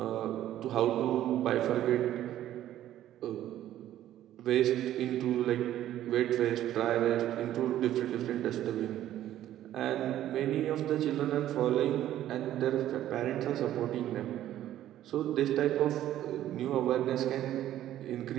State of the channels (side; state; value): left; quieter; 12.6 dB